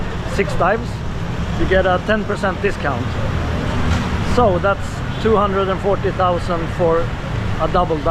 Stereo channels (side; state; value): both; identical; correlation 1.00